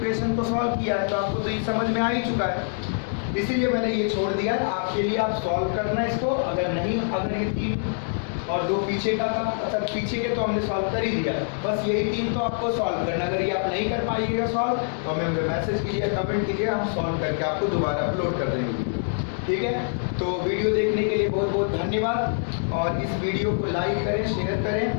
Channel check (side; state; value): right; silent; digital silence